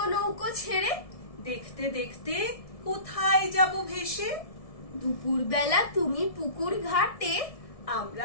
নৌকো ছেড়ে, দেখতে দেখতে কোথায় যাব ভেসে। দুপুর বেলা তুমি পুকুর ঘাটে,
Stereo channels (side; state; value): right; late; 1.7 ms